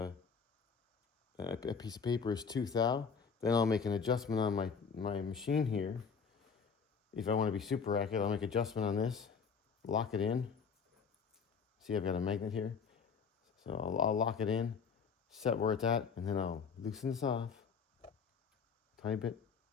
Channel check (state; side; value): quieter; right; 5.9 dB